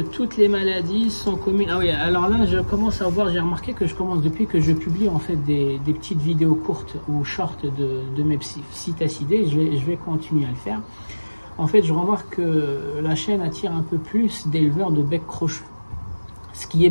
les maladies sont communes? Ah oui, alors là je commence à voir, j'ai remarqué que je commence depuis que je publie en fait des petites vidéos courtes ou short de mes psittacidés, je vais continuer à le faire. En fait je remarque que la chaîne attire un peu plus d'éleveurs de bec crochu. Ce qui est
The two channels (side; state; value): both; inverted; correlation -1.00